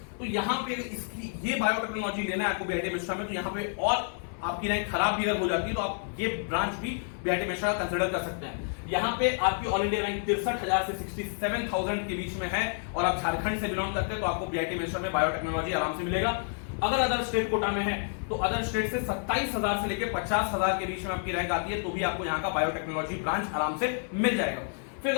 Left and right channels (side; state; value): right; silent; 58 dB below the other